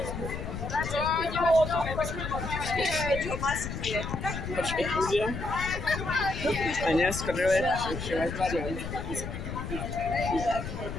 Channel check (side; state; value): left; noise; rumble, 6 dB below the sound